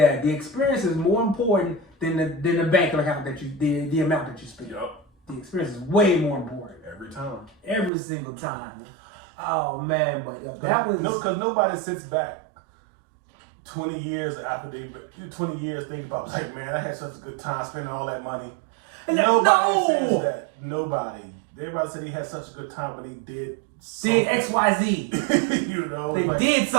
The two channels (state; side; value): drops out; left; at 7.9 s